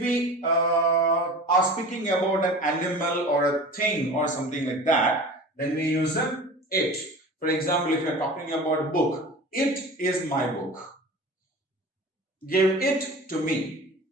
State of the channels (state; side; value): normal; both; correlation 0.37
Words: are speaking about an animal or a thing or something like that, then we use a it. For example, if you are talking about book, it is my book. Give it to me.